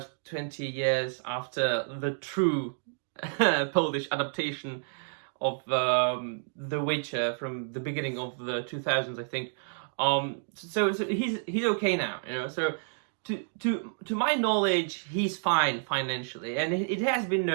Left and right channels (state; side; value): silent; left; digital silence